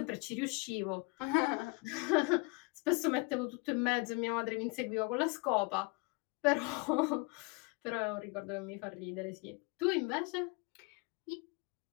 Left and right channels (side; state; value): right; quieter; 28.6 dB